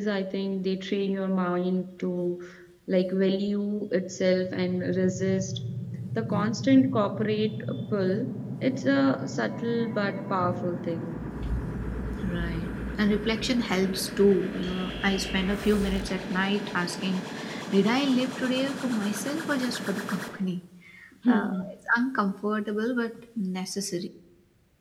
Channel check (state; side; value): identical; both; correlation 1.00